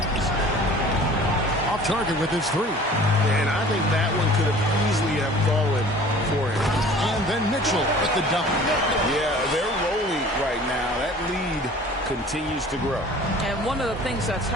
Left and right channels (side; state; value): both; normal; correlation 0.47